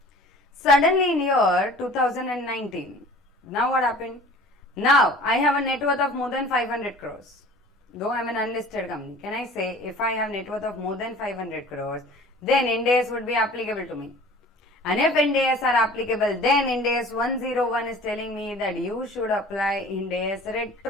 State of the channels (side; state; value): both; normal; correlation 0.45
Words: Suddenly in year 2019, now what happened? Now I have a net worth of more than 500 crores. Though I am an unlisted company, can I say if I have net worth of more than 500 crores, then Ind AS would be applicable to me. And if Ind AS are applicable, then Ind AS 101 is telling me that you should apply Ind AS